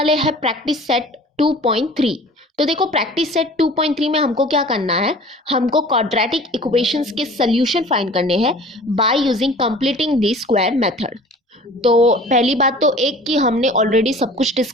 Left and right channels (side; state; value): both; normal; correlation 0.45